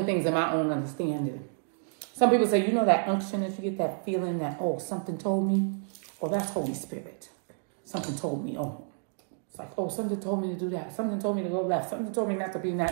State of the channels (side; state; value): left; silent; 58 dB below the other